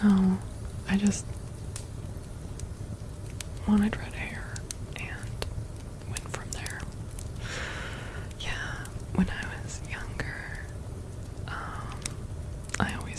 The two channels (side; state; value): both; identical; correlation 1.00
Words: No. I just wanted red hair and went from there. Yeah, when I was younger, I